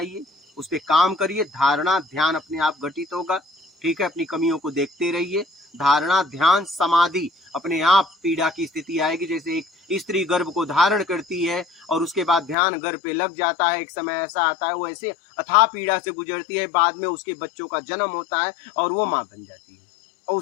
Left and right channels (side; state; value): right; drops out; at 12.6 s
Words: उस पे काम करिए। धारणा, ध्यान अपने आप घटित होगा, ठीक है। अपनी कमियों को देखते रहिए। धारणा, ध्यान, समाधि, अपने आप पीड़ा की स्थिति आएगी। जैसे एक स्त्री गर्भ को धारण करती है और उसके बाद ध्यान गर्भ पे लग जाता है, एक समय ऐसा आता है वो ऐसे अथाह पीड़ा से गुजरती है, बाद में उसके बच्चों का जन्म होता है और वो माँ बन जाती है और